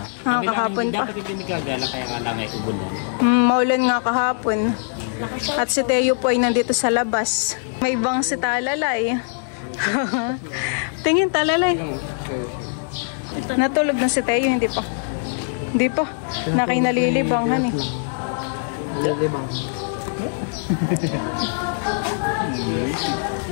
Kahapon pa. Dapat hindi gagala kaya nga lang ay ubunan. Maulan nga kahapon. At si Teo po ay nandito sa labas. May ibang si Talalay. Tingin Talalay. Natulog na si Teo, hindi pa. Hindi pa. Nakinalilibanghan eh. Nalilibang.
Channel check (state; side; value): silent; right; digital silence